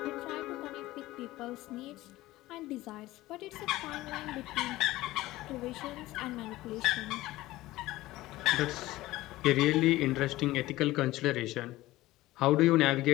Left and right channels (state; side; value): quieter; right; 17.5 dB